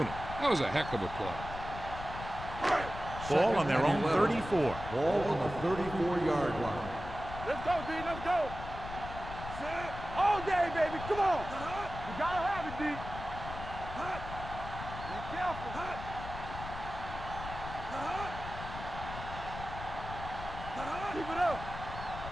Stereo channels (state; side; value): noise; left; rumble, 9 dB below the sound